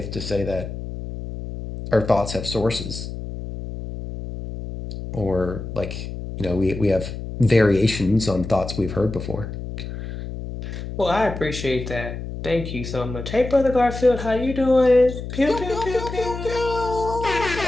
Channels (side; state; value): left; noise; hum, 8 dB below the sound